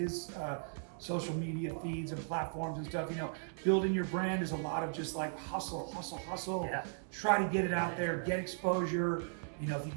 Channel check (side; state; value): left; silent; 53 dB below the other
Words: social media feeds and platforms and stuff. Building your brand is a lot of just like hustle. Yeah. Try to get it out there, get exposure. If you